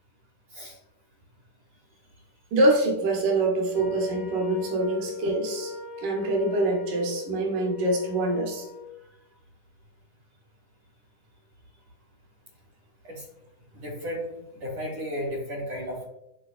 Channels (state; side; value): late; left; 10 ms